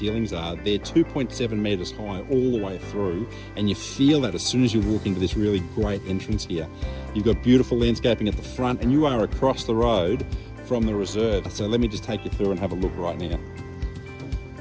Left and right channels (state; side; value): identical; both; correlation 1.00